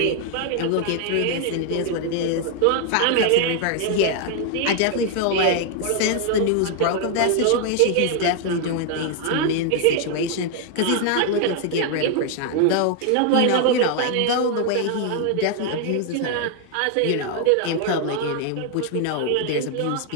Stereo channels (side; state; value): both; different; correlation 0.00